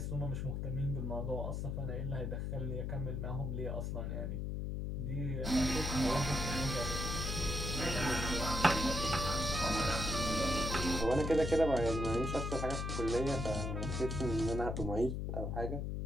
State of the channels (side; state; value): left; noise; hum, 2 dB below the sound